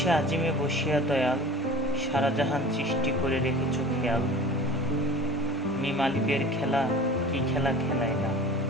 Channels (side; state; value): both; normal; correlation 0.40